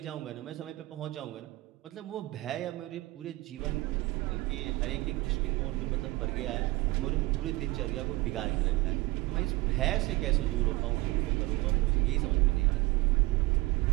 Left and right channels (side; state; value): left; quieter; 20.7 dB